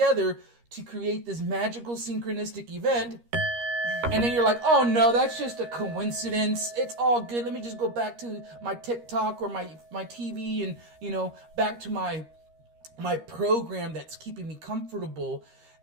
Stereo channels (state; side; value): late; left; 13 ms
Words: to create this magical synchronistic event. And then you're like, oh no, that's just a coincidence. It's all good. Let me just go back to my TikTok or my TV and, you know, back to my program that's keeping me comfortable.